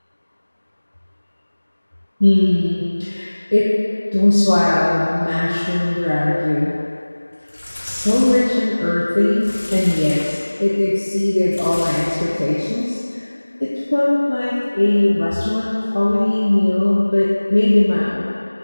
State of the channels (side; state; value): both; inverted; correlation -1.00